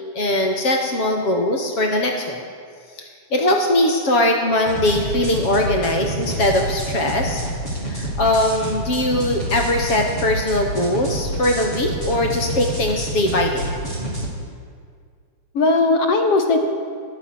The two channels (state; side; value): late; right; 7.3 ms